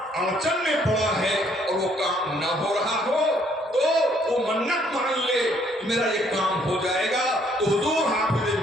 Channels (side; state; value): both; normal; correlation 0.65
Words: اڑچن میں پڑا ہے اور وہ کام نہ ہو رہا ہو تو وہ منت مان لے کہ میرا یہ کام ہو جائے گا تو حضور حافظ